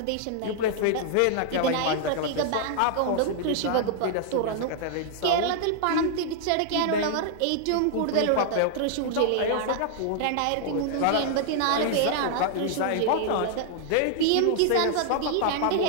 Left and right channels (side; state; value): both; different; correlation -0.01